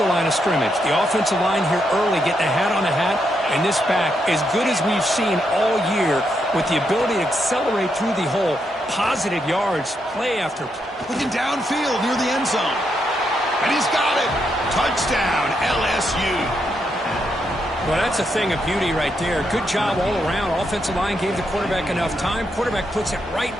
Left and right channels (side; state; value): both; normal; correlation 0.80